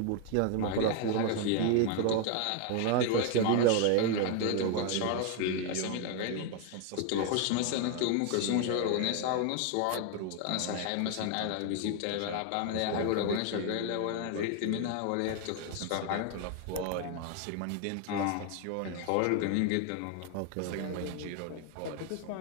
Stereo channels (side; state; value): both; different; correlation 0.01